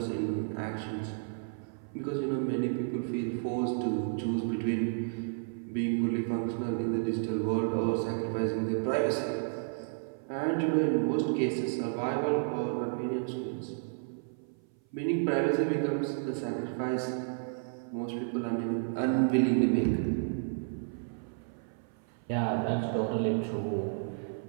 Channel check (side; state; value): left; silent; 57 dB below the other